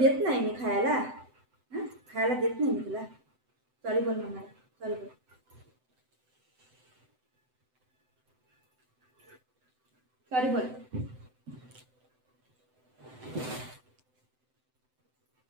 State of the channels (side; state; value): left; late; 7.8 ms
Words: देत नाही मी खायला. खायला देत नाही मी तुला. सॉरी बोल मम्मा. सॉरी बोल. सॉरी बोल.